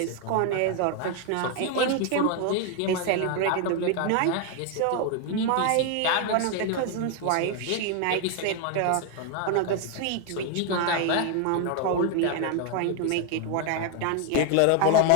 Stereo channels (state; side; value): different; both; correlation 0.01